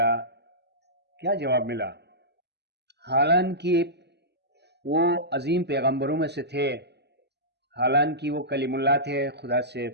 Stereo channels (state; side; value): late; left; 0.49 ms